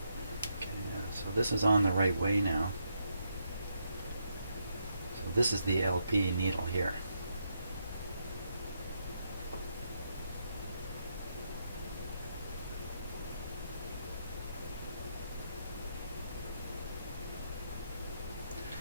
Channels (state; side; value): inverted; both; correlation -0.79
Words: okay, so this is on the right way now. So this is the LP needle here.